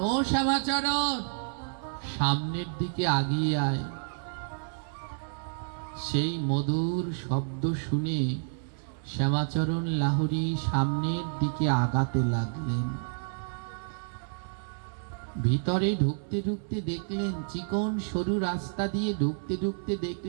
ও শ্যামাচরণ, সামনের দিকে আগিয়ে আয়। সেই মধুর শব্দ শুনে শ্যামাচরণ লাহোরী সামনের দিকে আগাতে লাগলেন। ভিতরে ঢুকতে ঢুকতে দেখলেন, চিকন সরু রাস্তা দিয়ে ঢুকতে ঢুকতে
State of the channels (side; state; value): left; silent; 58 dB below the other